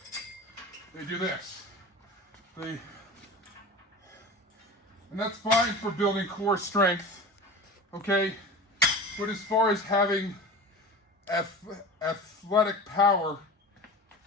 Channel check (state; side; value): normal; both; correlation 0.33